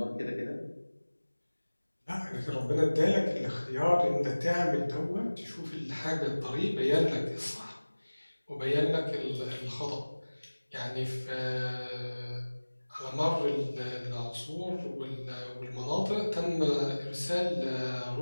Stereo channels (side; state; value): both; inverted; correlation -1.00